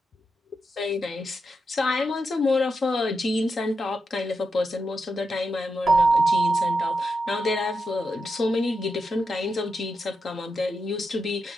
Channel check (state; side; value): normal; both; correlation 0.86